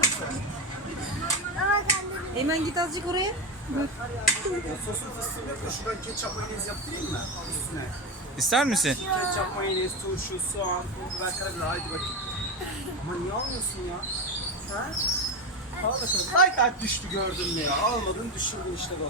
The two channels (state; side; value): normal; both; correlation 0.17